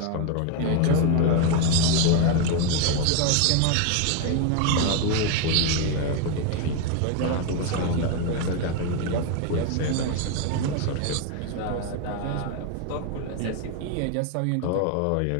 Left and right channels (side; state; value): both; different; correlation 0.02